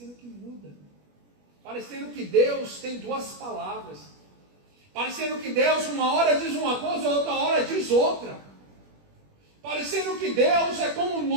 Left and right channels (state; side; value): late; left; 21 ms